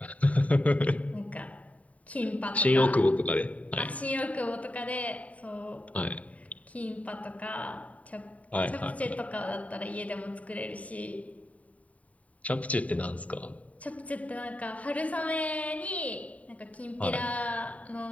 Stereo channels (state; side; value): late; right; 0.068 ms